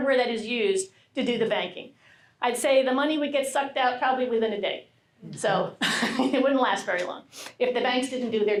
that is used to do the banking? I'd say the money would get sucked out probably within a day. So it wouldn't last very long if the banks didn't do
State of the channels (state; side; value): identical; both; correlation 1.00